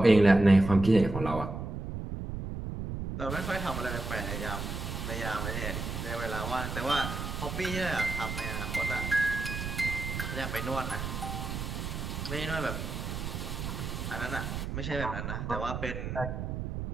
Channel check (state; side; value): noise; right; rumble, 5 dB below the sound